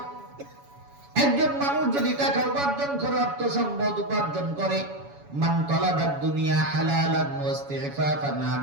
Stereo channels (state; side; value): late; left; 7.1 ms